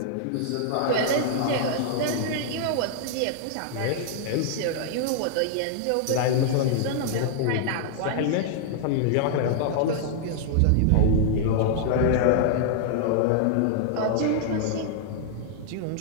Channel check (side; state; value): both; different; correlation -0.01